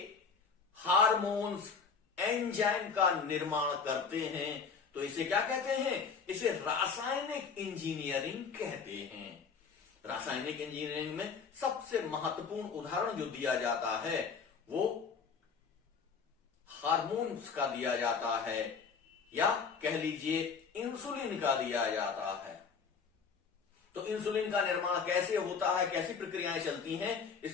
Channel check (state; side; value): quieter; right; 5.6 dB